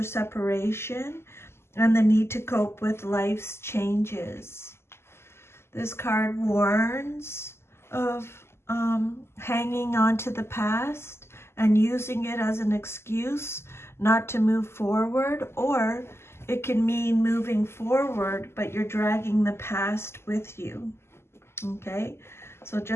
separation, and the need to cope with life's changes. This card warns of hanging on to the past and using it as an excuse not to move forward, or it can mean moving forward, but you're dragging the past with you. Okay, so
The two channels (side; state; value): right; late; 0.12 ms